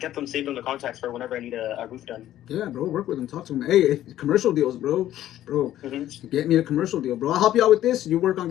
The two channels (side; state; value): right; quieter; 12.8 dB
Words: them saved on the contacts for whenever I need a roof done. Yeah, bro, work with them, talk to them. Hey, commercial deals, bro. Get me a commercial deal, bro. I'll help you out with this. You work on